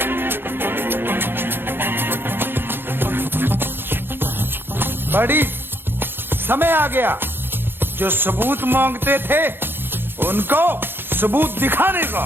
बड़ी समय आ गया, जो सबूत मांगते थे उनको सबूत दिखाने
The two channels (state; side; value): late; left; 0.10 ms